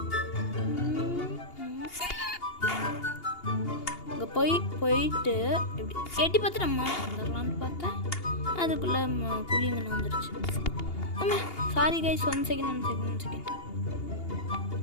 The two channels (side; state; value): right; late; 2.8 ms